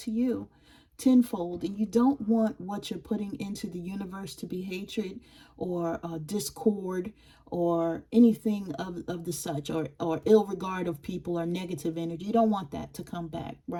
you tenfold. And you don't want what you're putting into the universe to be hatred or discord or anything of the such, or ill regard of people or negative energy. You don't want that to come back,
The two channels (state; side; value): identical; both; correlation 1.00